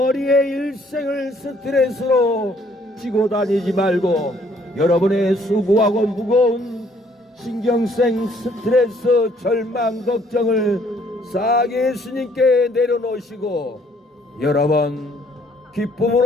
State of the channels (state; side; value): normal; both; correlation 0.64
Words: 일생을 스트레스로 지고 다니지 말고 여러분의 수고하고 무거운 신경생 스트레스, 절망, 걱정을 싹 예수님께 내려놓으시고 여러분